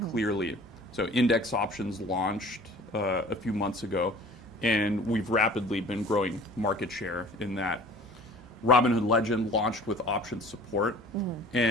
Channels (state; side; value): normal; both; correlation 0.46